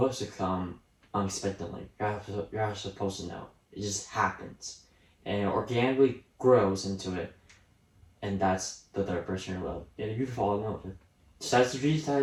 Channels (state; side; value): identical; both; correlation 1.00